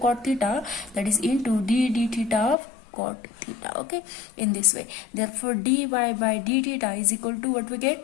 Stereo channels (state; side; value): drops out; right; at 2.6 s